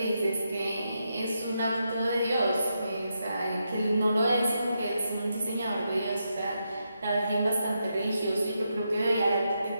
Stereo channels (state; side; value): inverted; both; correlation -0.83